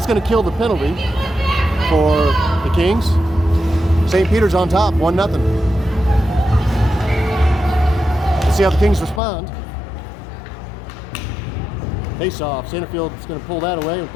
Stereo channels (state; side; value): drops out; right; at 9.2 s